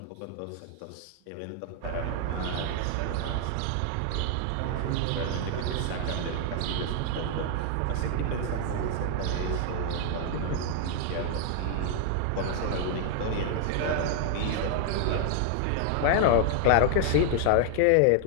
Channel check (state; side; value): different; both; correlation 0.00